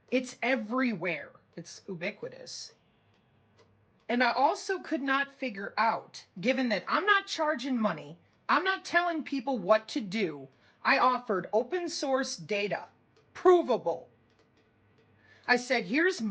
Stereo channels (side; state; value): both; identical; correlation 1.00